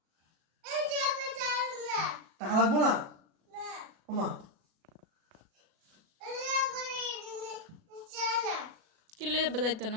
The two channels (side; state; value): left; late; 37 ms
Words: টাকা লাগবো না ওমা? কিনলে বাজাইতো